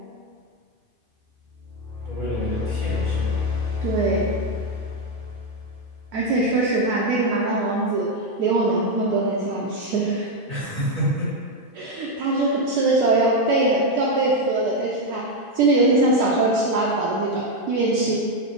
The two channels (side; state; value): left; late; 2.5 ms